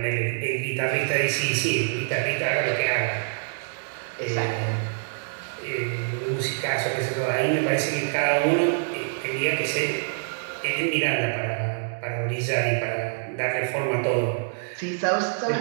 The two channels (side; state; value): left; silent; digital silence